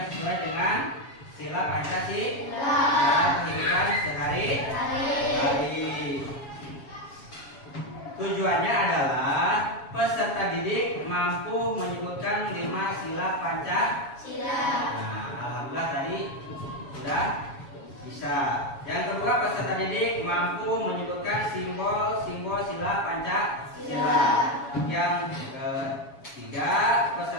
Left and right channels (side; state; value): right; late; 7.2 ms